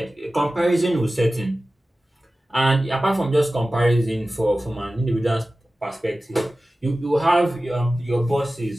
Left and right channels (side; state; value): both; normal; correlation 0.96